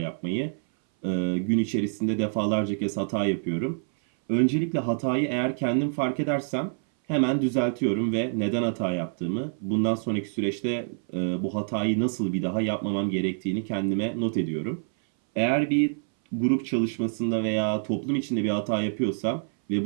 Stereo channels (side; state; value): left; silent; 59 dB below the other